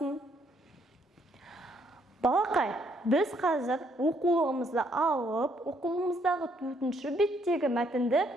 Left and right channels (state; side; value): normal; both; correlation 0.70